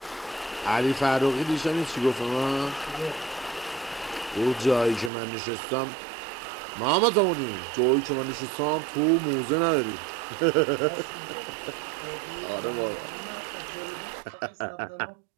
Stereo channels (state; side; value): drops out; left; at 5.1 s